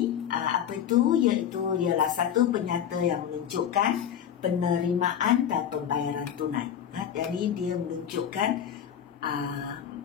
apa itu? Iaitu ialah satu penyata yang menunjukkan penerimaan dan pembayaran tunai. Jadi dia menunjukkan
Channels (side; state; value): right; quieter; 9.3 dB